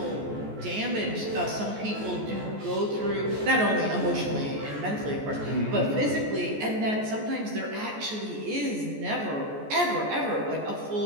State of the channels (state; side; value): late; left; 14 ms